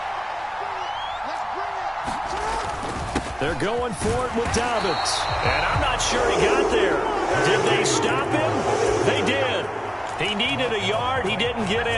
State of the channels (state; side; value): identical; both; correlation 1.00